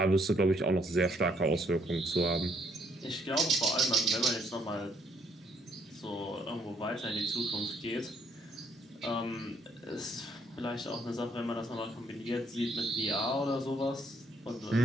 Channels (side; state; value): both; normal; correlation 0.69